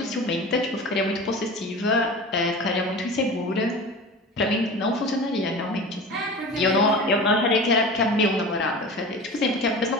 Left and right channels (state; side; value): normal; both; correlation 0.34